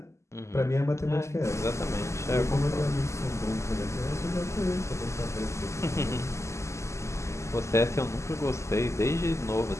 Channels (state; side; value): late; right; 0.13 ms